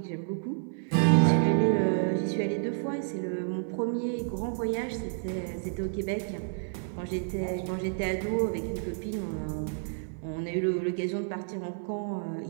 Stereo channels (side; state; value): left; silent; 58 dB below the other